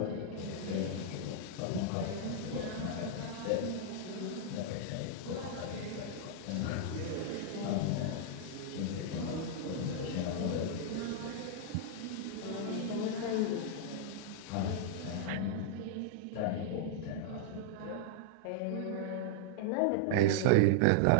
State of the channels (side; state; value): both; different; correlation -0.01